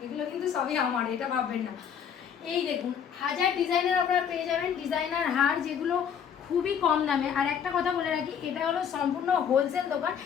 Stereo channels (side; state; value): right; quieter; 8.0 dB